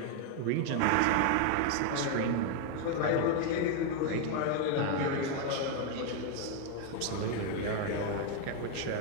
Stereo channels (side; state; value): both; different; correlation 0.01